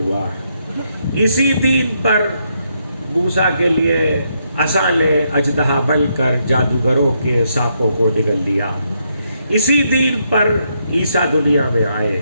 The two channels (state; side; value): inverted; both; correlation -0.77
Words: اسی دین پر موسیٰ کے لیے عصا نے اژدہا بن کر جادوگروں کے سانپوں کو نگل لیا، اسی دین پر عیسیٰ دنیا میں آئے،